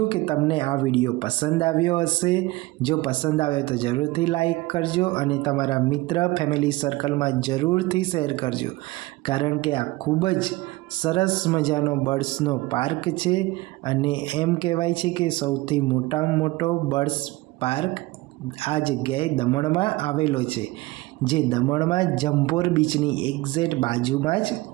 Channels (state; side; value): quieter; left; 20.3 dB